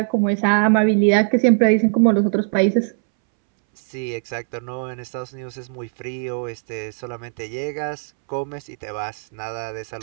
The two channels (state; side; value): silent; left; 65 dB below the other